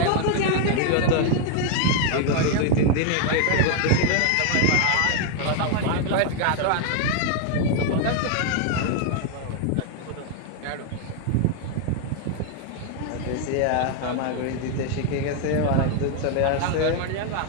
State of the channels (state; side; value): different; both; correlation 0.00